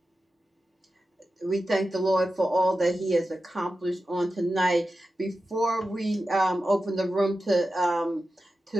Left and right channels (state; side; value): normal; both; correlation 0.92